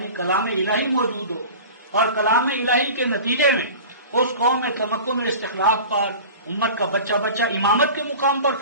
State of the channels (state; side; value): inverted; both; correlation -0.37